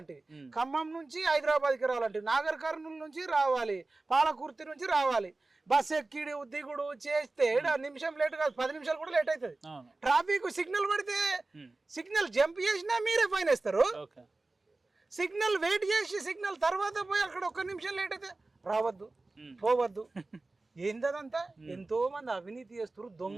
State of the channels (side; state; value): left; quieter; 3.2 dB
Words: ఖమ్మం నుంచి హైదరాబాద్కి రావాలంటివి, నాగర్ కర్నూలు నుంచి రావాలి, పాలకుర్తి నుంచి రావాలి, బస్ ఎక్కిడు దిగుడు చేస్తే నిమిషం లేట్ కాదు, 10 నిమిషాలు కూడా లేట్ అవుతుంది. ట్రాఫిక్ సిగ్నల్ పడితే సిగ్నల్ జంప్ చేసినా మీరే ఫైన్ వేస్తారు. సిగ్నల్ వెయిట్ చేసి సిగ్నల్ తర్వాత పోయి అక్కడ ఒక్క నిమిషం లేట్ అయితే రావద్దు, పోవద్దు. ఏందదంతా? ఎంతో మంది అవినీతి చేస్తారు,